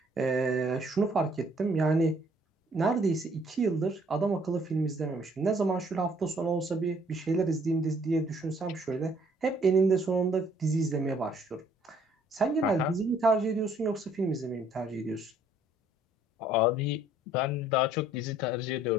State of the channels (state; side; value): normal; both; correlation 0.62